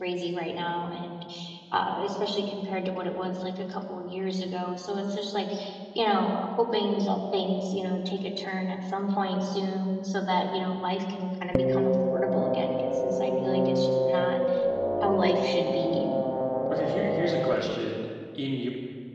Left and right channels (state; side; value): identical; both; correlation 1.00